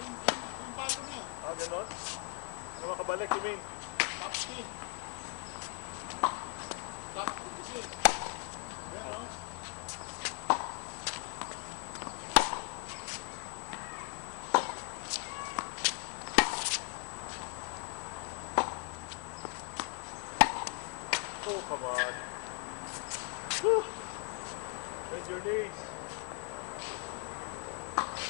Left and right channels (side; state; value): right; quieter; 36.9 dB